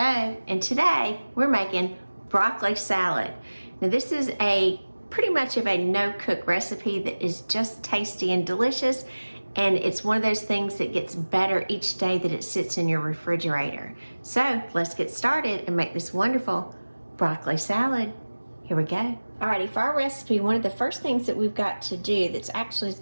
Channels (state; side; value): inverted; both; correlation -1.00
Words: and today we're making broccoli salad. Now this is a pretty much of a no-cook recipe that is just tasty and delicious, and it's one of those things that gets better each day that it sits in your refrigerator. So let's get started and make this wonderful broccoli salad. Here we go. Alrighty, for our recipe, one of the first things that we've got to do that's actually is